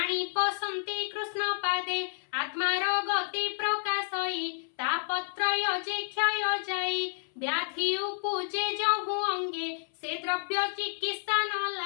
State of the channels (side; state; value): right; silent; 58 dB below the other